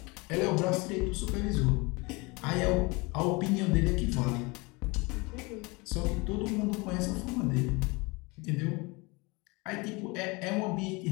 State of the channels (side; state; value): right; quieter; 26.3 dB